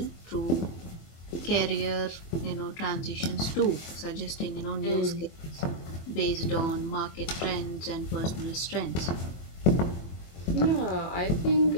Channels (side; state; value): right; late; 24 ms